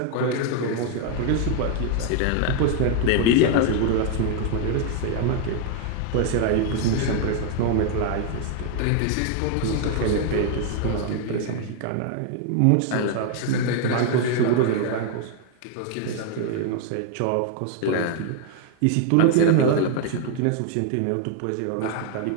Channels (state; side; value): different; both; correlation 0.00